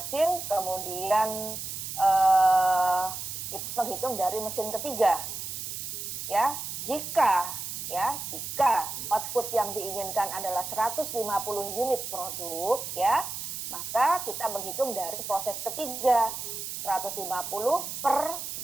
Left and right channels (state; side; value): noise; right; hiss, 6 dB below the sound